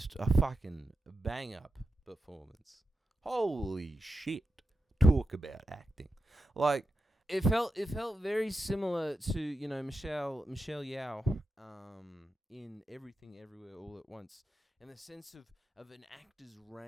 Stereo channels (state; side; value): normal; both; correlation 0.88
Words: a fucking bang up performance. Holy shit. talk about acting. Like, it felt very similar to, you know, Michelle Yeoh in Everything Everywhere All at Once, in the sense of an actor's